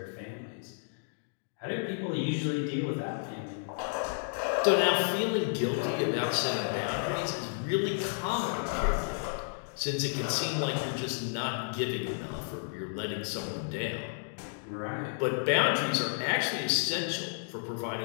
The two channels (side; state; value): right; silent; digital silence